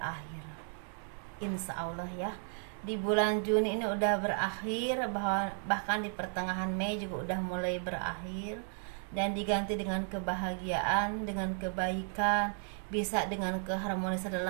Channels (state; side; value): silent; left; 55 dB below the other